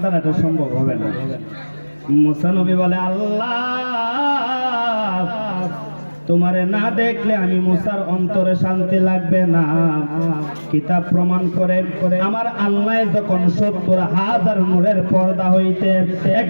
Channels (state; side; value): inverted; both; correlation -1.00